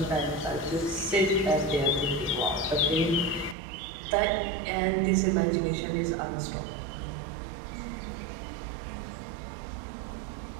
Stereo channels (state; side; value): drops out; left; at 3.6 s